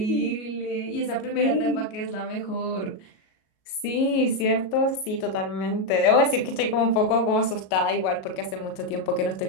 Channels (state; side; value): late; right; 37 ms